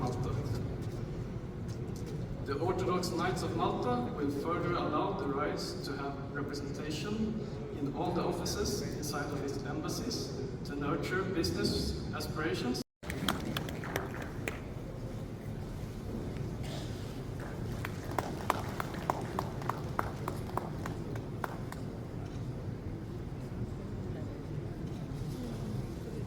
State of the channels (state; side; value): identical; both; correlation 1.00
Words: The Orthodox Knights of Malta will further allow the RISE to have representation in all the offices inside of its embassies to nurture business aspirations.